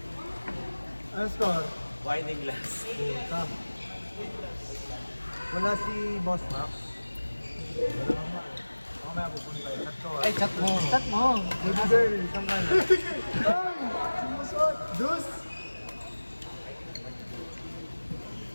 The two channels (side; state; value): both; inverted; correlation -1.00